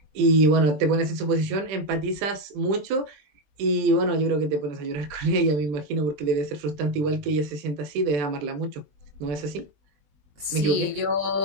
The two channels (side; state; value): left; late; 20 ms